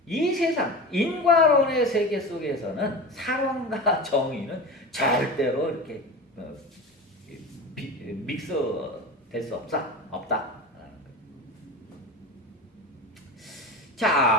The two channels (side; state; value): both; normal; correlation 0.28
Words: 이 세상 인과론의 세계 속에서는 사랑과 정의는 절대로 이렇게 믹스될 수 없다.